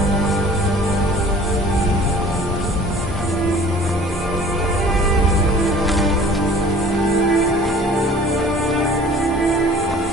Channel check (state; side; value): normal; both; correlation 0.47